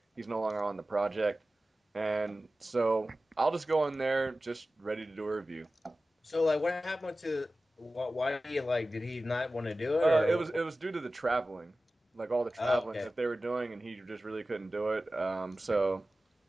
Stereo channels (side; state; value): both; normal; correlation 0.95